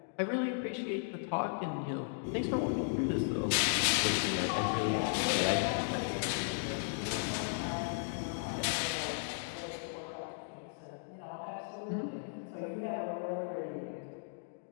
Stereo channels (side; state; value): right; silent; digital silence